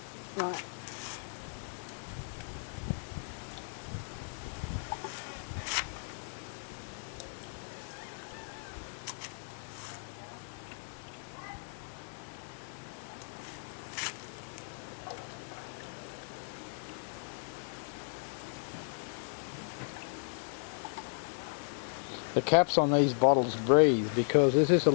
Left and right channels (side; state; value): right; silent; digital silence